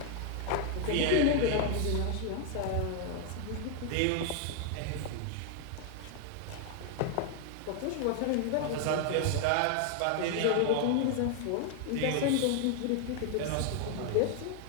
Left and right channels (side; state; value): both; different; correlation 0.00